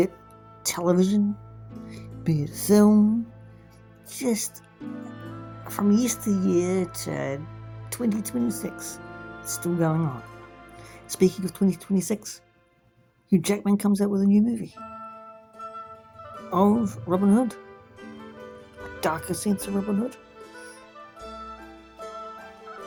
television, be it film, just from yesteryear to 2026, it's still going on. Speaking of 2026, Hugh Jackman comes out with a new movie of Robin Hood, a darker sense of Robin Hood,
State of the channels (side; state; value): both; identical; correlation 1.00